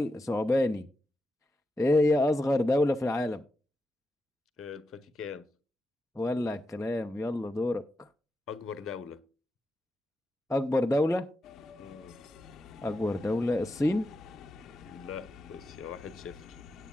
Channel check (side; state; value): both; normal; correlation 0.88